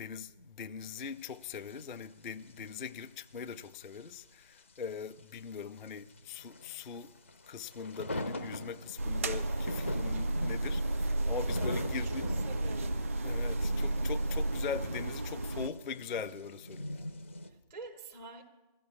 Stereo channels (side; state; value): both; inverted; correlation -0.70